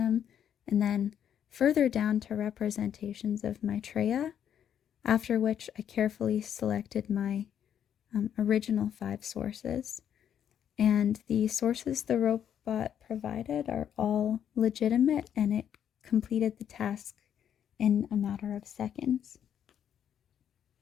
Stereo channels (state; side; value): quieter; right; 9.2 dB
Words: and then further down to representations of Maitreya, after which I carefully selected my original 5 sources. And the sources the robot provided are all legitimate, and it completed the task in a matter of seconds.